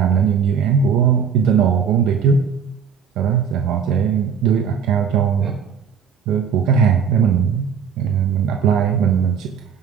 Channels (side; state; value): left; quieter; 6.9 dB